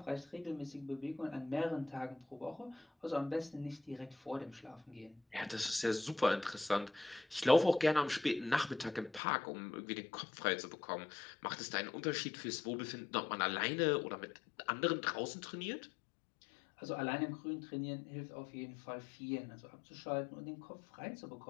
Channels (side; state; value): right; drops out; at 9.2 s